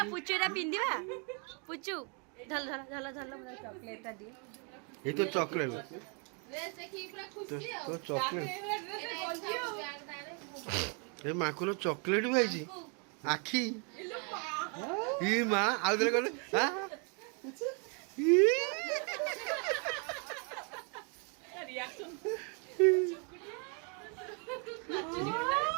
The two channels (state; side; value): quieter; left; 37.2 dB